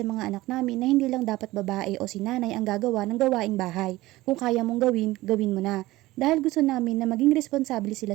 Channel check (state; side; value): quieter; left; 18.1 dB